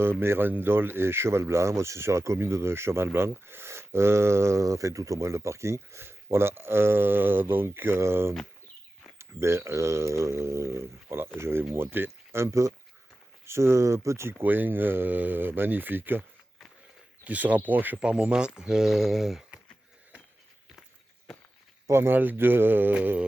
Mérindol et Cheval-Blanc. Moi, c'est sur la commune de Cheval-Blanc, enfin tout au moins le parking. Voilà, voilà, je vais vous montrer un peu ce petit coin magnifique qui se rapproche par moments pas mal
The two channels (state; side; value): normal; both; correlation 0.94